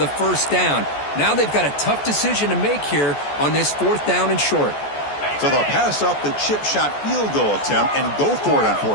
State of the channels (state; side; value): late; right; 14 ms